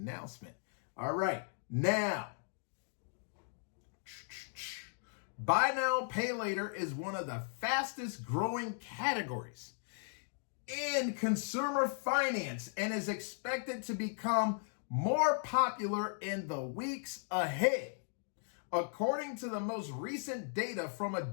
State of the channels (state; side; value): silent; right; digital silence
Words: All right. Now, buy now, pay later is one of the fastest growing categories in consumer finance and is expected to become more popular in the weeks ahead. According to the most recent data from